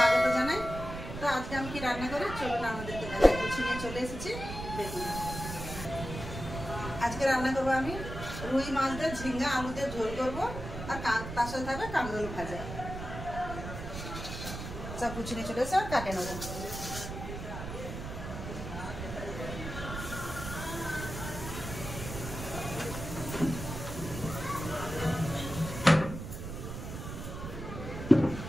জানাই। তো আজকে আমি কি রান্না করি চলুন আমাদেরকে দেখাই। কিছু নিয়ে চলে এসেছি, দেখুন। আজকে রান্না করব আমি রুই মাছ দিয়ে ঝিঙ্গা আলু দিয়ে ঝোল করব, আর তার সাথে থাকবে কাঁকরোল ভাজা। সব কিছু নিয়ে চলে এসে আর কাটে নেব।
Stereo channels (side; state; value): right; noise; rumble, 8 dB below the sound